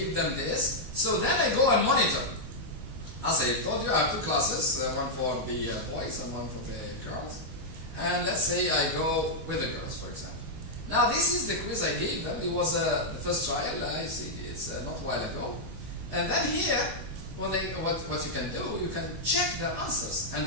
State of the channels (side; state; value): left; late; 19 ms